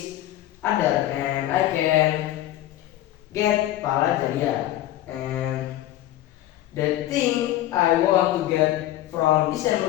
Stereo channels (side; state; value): right; quieter; 14.0 dB